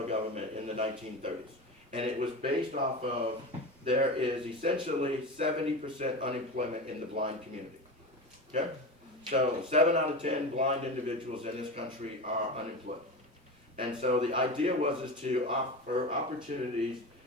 government in the 1930s. And it was based off of, there is essentially 70% unemployment in the blind community. Okay? So 7 out of 10 blind individuals in this country are unemployed. And so the idea was to offer opportunities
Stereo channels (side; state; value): both; normal; correlation 0.25